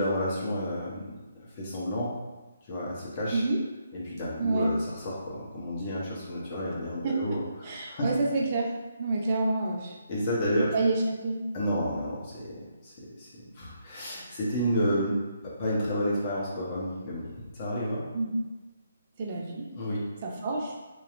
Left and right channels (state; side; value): inverted; both; correlation -0.76